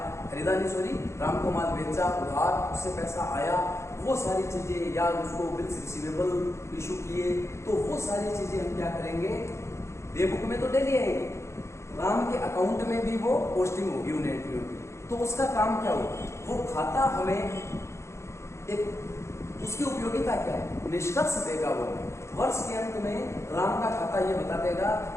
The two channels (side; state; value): right; late; 0.13 ms